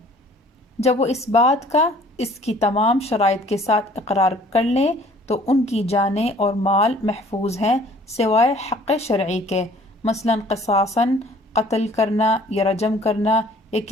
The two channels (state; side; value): normal; both; correlation 0.54